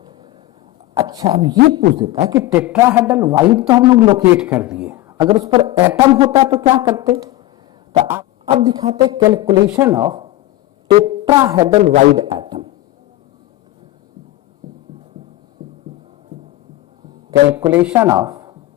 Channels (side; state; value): right; quieter; 16.2 dB